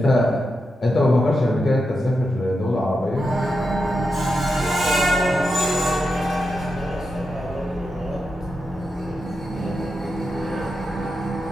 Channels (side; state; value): both; normal; correlation 0.87